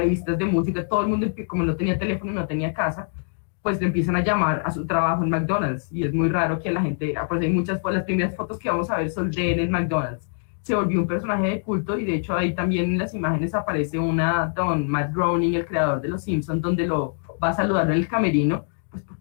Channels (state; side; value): silent; right; digital silence